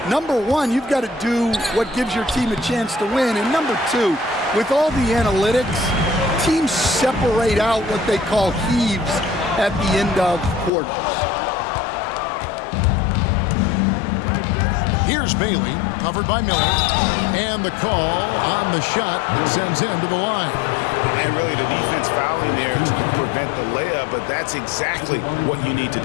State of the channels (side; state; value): right; drops out; at 10.7 s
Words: number one, you've got to do what gives your team a chance to win. And number two, with all the analytics, teams separate out what they call heaves at the end of quarters. Here's Bailey, covered by Miller, and the call on the shot that sends him to the line. And really the defense fouling there to prevent the layup, but that's exactly what you need to